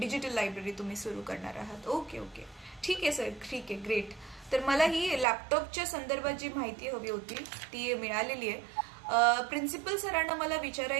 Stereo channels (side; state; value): left; drops out; at 5.2 s